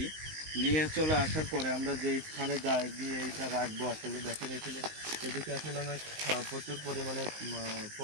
নিয়ে চলে আসার পরে আমরা যে স্থানে যাই গিয়ে এইটা রাখবো, আসলে দেখেন এখানে এদিকে আসলে অনেক প্রচুর পরিমাণে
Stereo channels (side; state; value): left; late; 19 ms